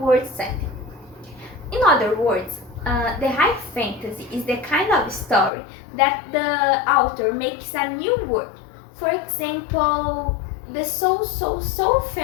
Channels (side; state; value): right; drops out; at 5.5 s